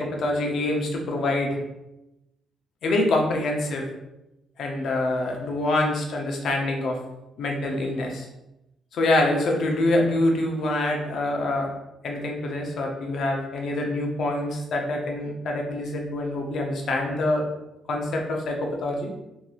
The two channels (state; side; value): normal; both; correlation 0.75